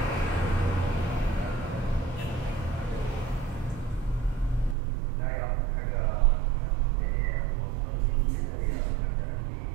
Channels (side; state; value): left; drops out; at 4.8 s